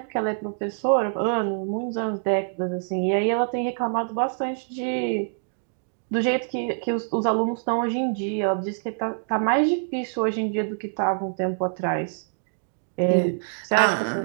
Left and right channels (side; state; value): left; silent; digital silence